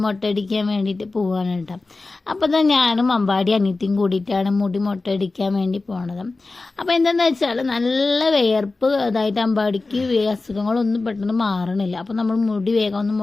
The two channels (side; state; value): right; quieter; 3.5 dB